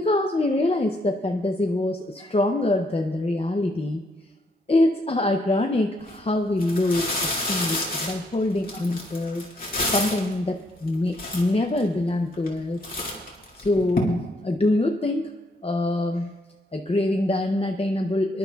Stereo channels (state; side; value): normal; both; correlation 0.73